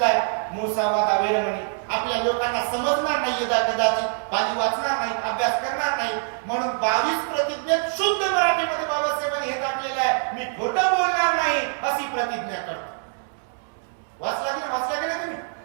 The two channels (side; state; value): left; silent; 62 dB below the other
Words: आहे, मुसावादा वेरवणी आपल्या लोकांना समजणार नाही, कदाचित पाली वाचणार नाही, अभ्यास करणार नाही, म्हणून 22 प्रतिज्ञेत शुद्ध मराठीमध्ये बाबासाहेबांनी हे टाकलेलं आहे, मी खोटं बोलणार नाही अशी प्रतिज्ञा करतो. वाचला की नाही तुम्ही?